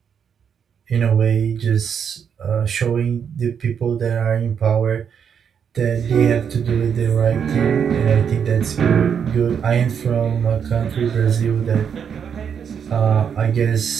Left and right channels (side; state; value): left; quieter; 7.5 dB